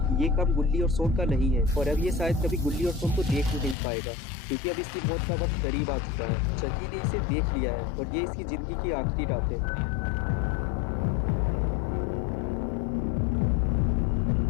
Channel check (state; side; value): drops out; right; at 3.8 s